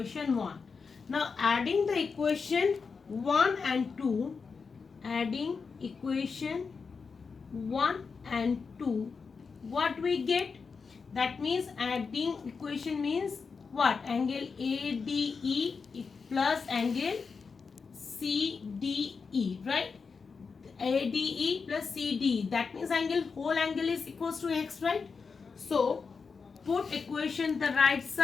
1. Now adding the equation 1 and 2, adding equation 1 and 2, what we get? That means adding equation means what? Angle ADE plus angle CDE, right? ADE plus CDE, that means angle, whole angle is equals to x, right? So put equation the right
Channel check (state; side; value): quieter; right; 5.1 dB